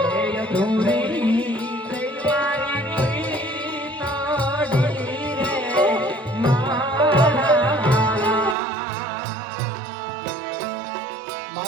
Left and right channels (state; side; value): drops out; left; at 8.6 s